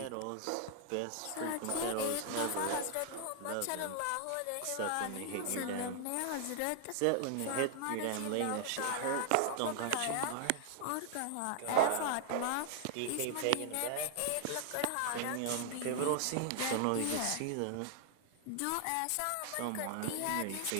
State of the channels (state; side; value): different; both; correlation 0.00